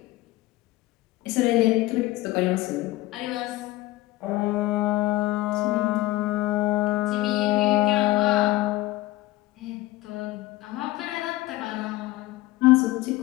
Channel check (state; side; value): quieter; right; 17.9 dB